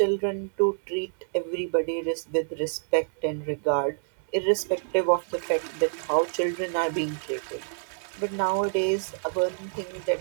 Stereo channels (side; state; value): left; silent; 60 dB below the other